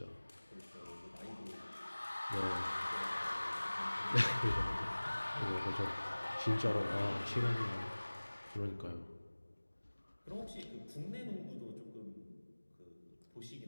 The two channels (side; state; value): both; inverted; correlation -1.00